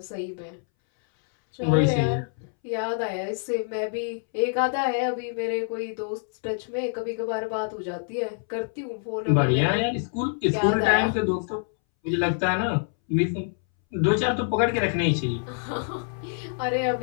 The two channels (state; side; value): silent; right; 61 dB below the other